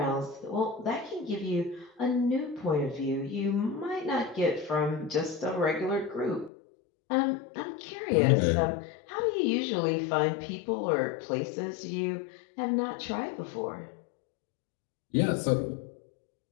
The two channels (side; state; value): right; drops out; at 6.5 s